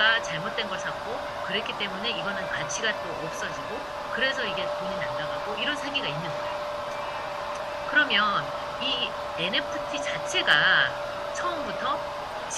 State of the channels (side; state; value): both; identical; correlation 1.00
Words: 잘못된 걸 샀고, 그랬기 때문에 이거는 가치가 또 없어지고, 그래서 이게 돈이 날아가고 이런 사기가 있는 거예요. 그러면 이 NFT 자체가 처음부터